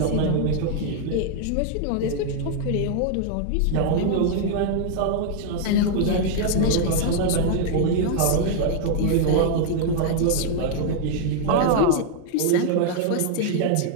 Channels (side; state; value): both; different; correlation 0.00